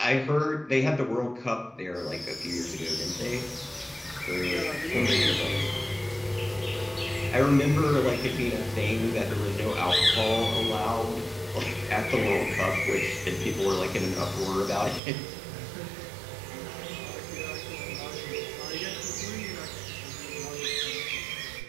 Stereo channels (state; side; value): drops out; left; at 15.0 s